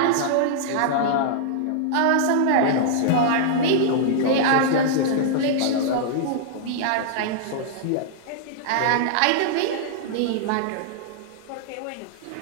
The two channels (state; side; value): different; both; correlation -0.01